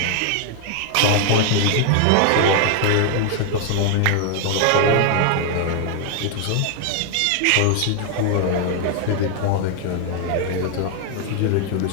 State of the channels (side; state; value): both; different; correlation 0.00